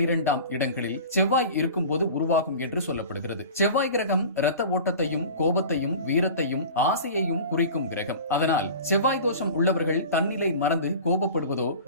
இடங்களில் செவ்வாய் இருக்கும்போது உருவாகும் என்று சொல்லப்படுகிறது. செவ்வாய் கிரகம் இரத்த ஓட்டத்தையும் கோபத்தையும் வீரத்தையும் ஆசையையும் குறிக்கும் கிரகம். அதனால் செவ்வாய் தோஷம் உள்ளவர்கள் தன்னிலை மறந்து கோபப்படுவதோ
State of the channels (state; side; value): inverted; both; correlation -0.37